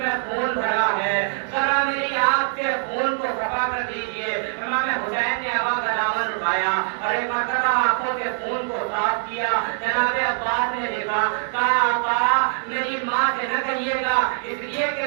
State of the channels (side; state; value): left; silent; digital silence